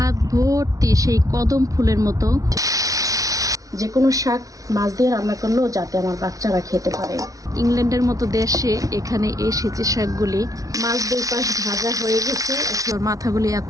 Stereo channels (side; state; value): left; late; 0.17 ms